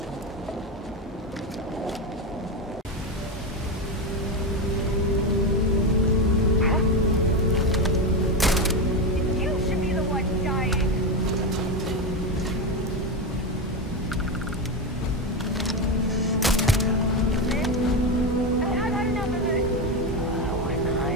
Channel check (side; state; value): both; normal; correlation 0.13